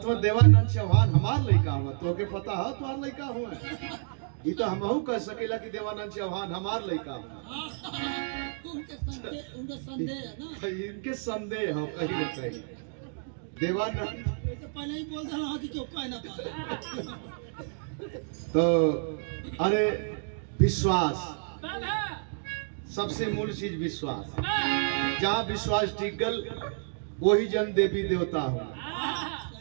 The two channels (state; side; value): silent; left; digital silence